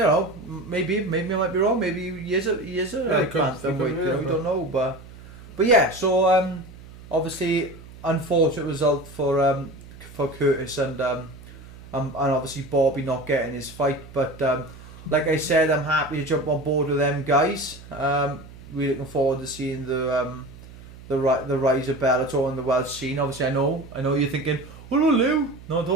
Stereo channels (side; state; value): right; noise; hum, 18 dB below the sound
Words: maybe I might be wrong. Maybe he is a bantamweight. You know, we don't know, but yeah. So obviously, unfortunate result for Curtis, and obviously Bobby not getting his fight, but. Like I said, I'm happy to jump on board with them guys. Really looking forward to seeing the rise of Bellator and the world scene. Obviously, I know you're thinking, "Oh no, Lou." No,